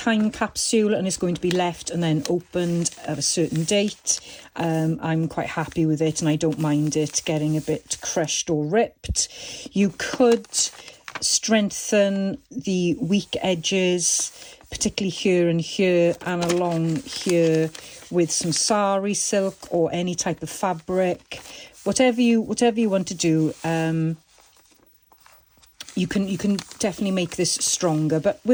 capsule and it's going to be left and then opened at a certain date, I'm quite happy with it and I don't mind it getting a bit crushed or ripped. You could strengthen the weak edges, particularly here and here and along here, with some sari silk or any type of fabric. Whatever you want to do, you can definitely make this stronger. But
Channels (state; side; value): identical; both; correlation 1.00